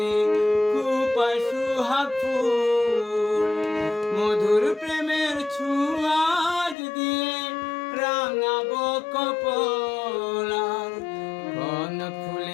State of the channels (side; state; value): right; drops out; at 6.8 s